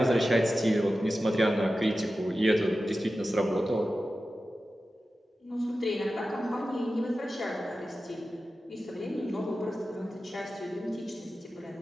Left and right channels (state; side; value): normal; both; correlation 0.93